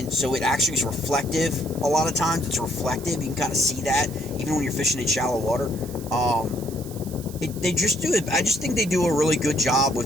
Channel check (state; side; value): noise; right; hiss, 17 dB below the sound